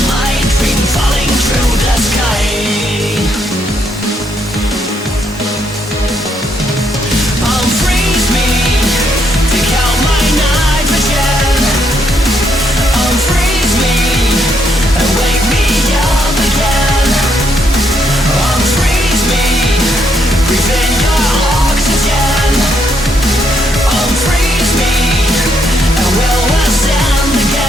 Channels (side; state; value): both; normal; correlation 0.75